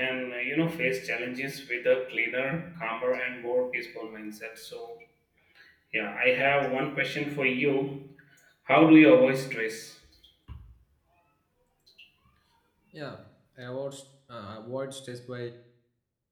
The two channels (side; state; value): both; identical; correlation 1.00